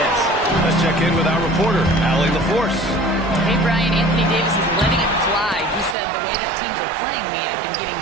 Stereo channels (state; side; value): drops out; left; at 6.0 s